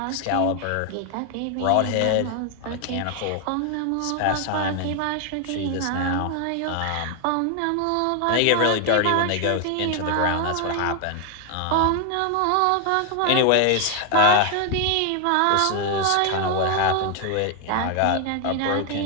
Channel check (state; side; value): different; both; correlation 0.01